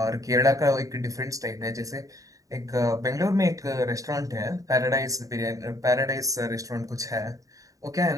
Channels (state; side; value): late; left; 0.16 ms